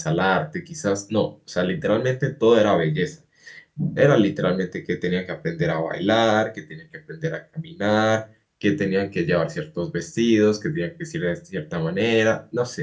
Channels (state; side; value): identical; both; correlation 1.00